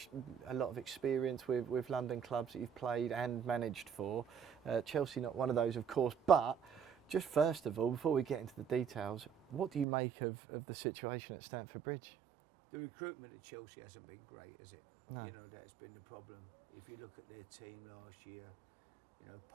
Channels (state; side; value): drops out; left; at 9.9 s